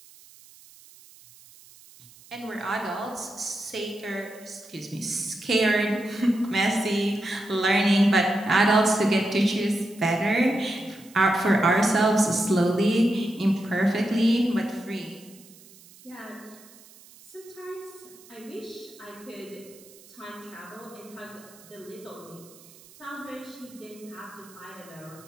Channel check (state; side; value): noise; right; hiss, 23 dB below the sound